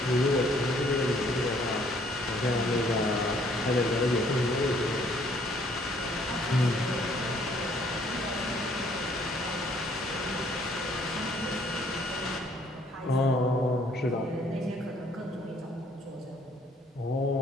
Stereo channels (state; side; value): normal; both; correlation 0.63